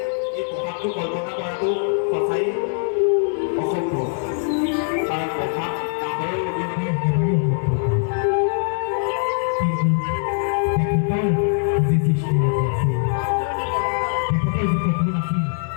এই প্ৰভাৱটো কল্পনা কৰাটো সঁচাই অসম্ভৱ, কাৰণ প্ৰভাৱ ডাঙৰৰ অবিহনে একেবাৰেই অসম্ভৱ। তেখেতৰ যি সৃষ্টি আছিল, তেখেতৰ যি সপোন আছিল,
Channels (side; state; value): right; silent; 64 dB below the other